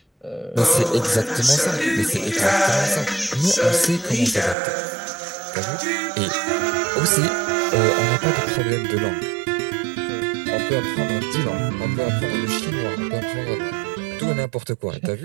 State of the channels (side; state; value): left; drops out; at 4.5 s